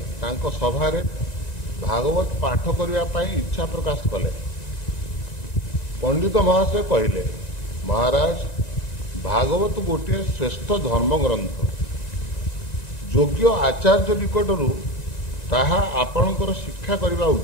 सभारे भागवत पाठ करने इच्छा प्रकाश कले। पंडित महाशय कहले, महाराज भागवत गोटे श्रेष्ठ धर्म ग्रंथ, योग्य आचार्य निकटरू ताहा आपणकर शिक्षा करने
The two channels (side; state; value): right; late; 1.9 ms